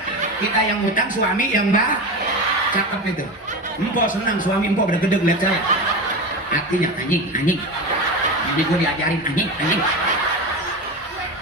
Kita yang utang, suami yang cakep itu. Empo senang suami empo gede-gede lihat saya. Artinya anjing. Jadi gue diajarin anjing.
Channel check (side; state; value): both; normal; correlation 0.24